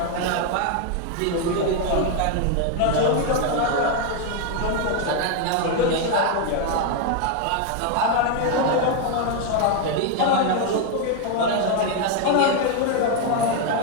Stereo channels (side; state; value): both; different; correlation 0.01